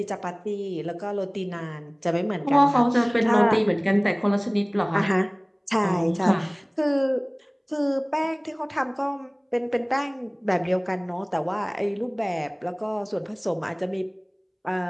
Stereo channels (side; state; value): both; identical; correlation 1.00